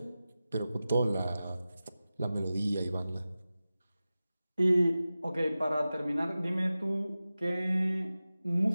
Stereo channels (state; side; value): inverted; both; correlation -0.95